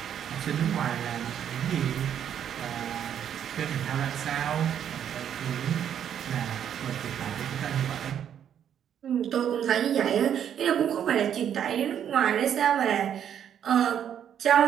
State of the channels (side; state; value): left; quieter; 9.3 dB